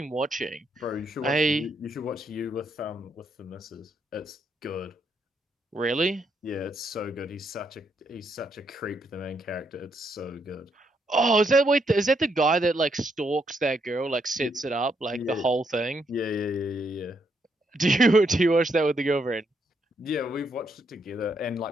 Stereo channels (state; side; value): normal; both; correlation 0.76